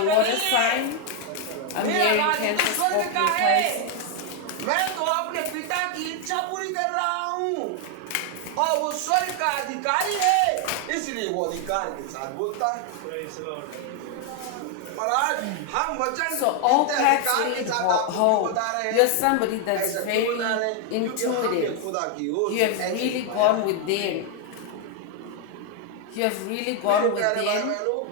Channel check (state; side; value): different; both; correlation 0.00